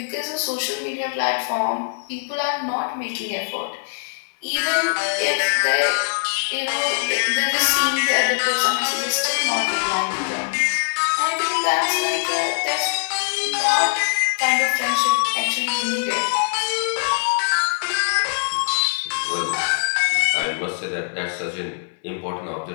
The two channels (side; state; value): right; silent; 63 dB below the other